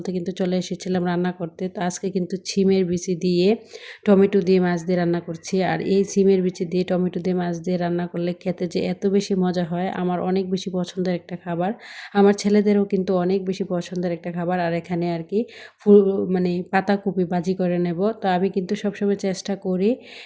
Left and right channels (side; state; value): both; identical; correlation 1.00